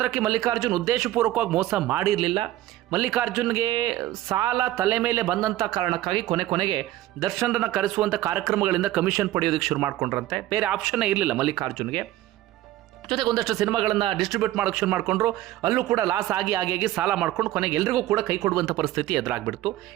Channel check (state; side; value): quieter; left; 15.1 dB